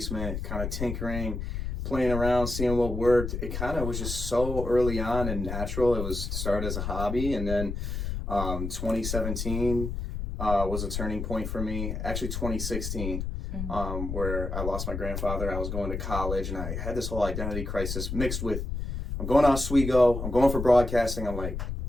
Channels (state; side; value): noise; left; rumble, 4 dB below the sound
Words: kind of tinkering, playing around, seeing what worked. It kind of was just so early on and natural. It was started as a hobby, and then 2017 was a turning point for me. Actually, 2016. Where I lost my grandfather. I was going to college and I had this whole identity crisis mixed with, I'm going to Oswego, I'm going for broadcasting. I'm like,